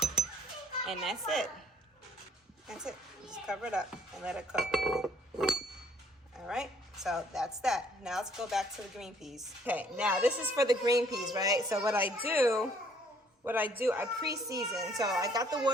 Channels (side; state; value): both; normal; correlation 0.62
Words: And that's it. That's it. Just cover it up and let it cook. All right, so that's that. Now let's go back to the green peas. Okay, now this is for the green peas, right? So what I do, I pre-season. So I got the